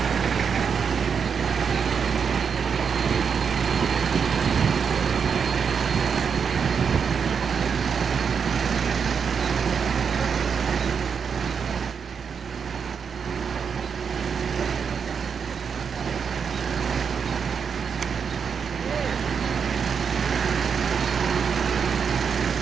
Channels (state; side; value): quieter; left; 6.5 dB